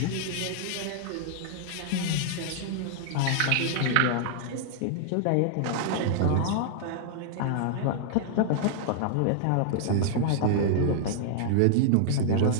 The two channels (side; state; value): both; different; correlation -0.01